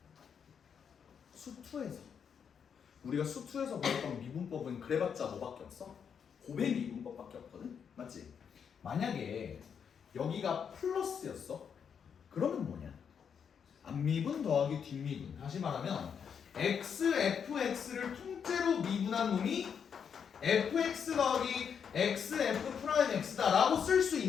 수투에서 우리가 수투에서 배웠던 미분법은 그래봤자 뭐밖에 없어? 고백 미분법밖에 없거든? 맞지? 만약에 여기가 플러스였어? 그러면 뭐냐? 앞미분 더하기 뒷미분. 다시 말하면 x, fx를 통째로 미분한 놈이 fx 더하기 x, f 프라임 x다 라고 쓸 수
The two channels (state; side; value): quieter; right; 7.2 dB